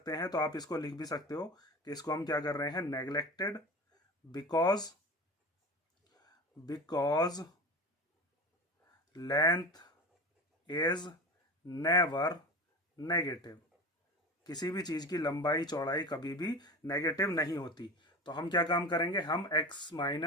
हैं। तो आप इसको लिख भी सकते हो कि इसको हम क्या कर रहे हैं, neglected because length is never negative. किसी भी चीज की लंबाई चौड़ाई कभी भी नेगेटिव नहीं होती। तो हम क्या काम करेंगे, हम x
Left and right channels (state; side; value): normal; both; correlation 0.30